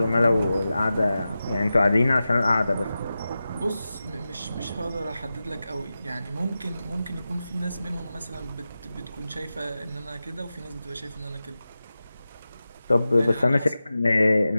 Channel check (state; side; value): inverted; both; correlation -0.93